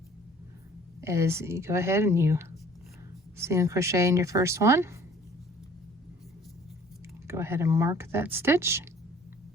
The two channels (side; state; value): both; normal; correlation 0.53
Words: is you go ahead and you single crochet in your first one. Go ahead and mark that stitch.